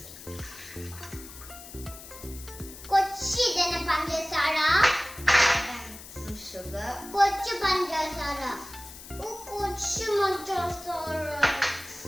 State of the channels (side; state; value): left; noise; hiss, 15 dB below the sound